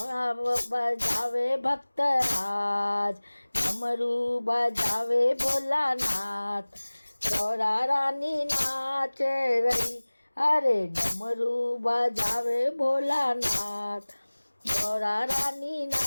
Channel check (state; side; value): inverted; both; correlation -1.00